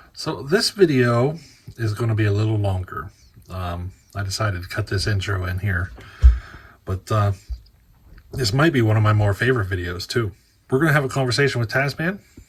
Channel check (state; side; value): identical; both; correlation 1.00